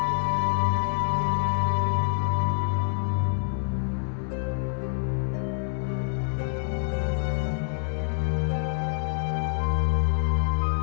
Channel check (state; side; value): silent; right; digital silence